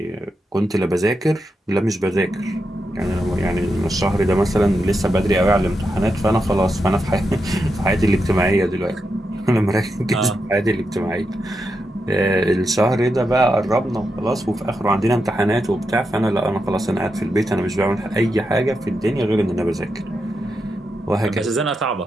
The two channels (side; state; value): both; normal; correlation 0.86